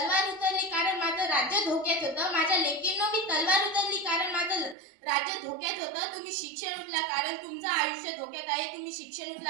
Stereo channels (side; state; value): left; drops out; at 4.8 s